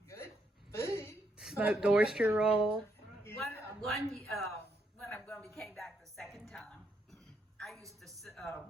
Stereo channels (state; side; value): normal; both; correlation 0.77